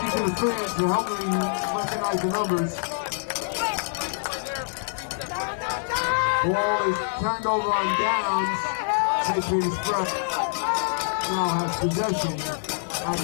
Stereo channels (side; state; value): right; silent; digital silence